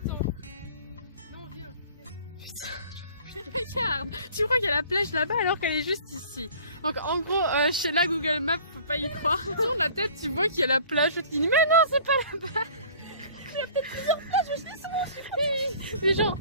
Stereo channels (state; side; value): inverted; both; correlation -0.49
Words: Non, viens. Regarde, tu crois qu'il y a la plage là-bas alors qu'elle est juste ici. Donc en gros, chez la Google Maps, faut pas y croire. Tourne la tête, tu vois qu'il y a la plage. Tu te dis mais non, c'est pas là-bas. Il y a peut-être plusieurs plages, je dis souvent. Mais genre,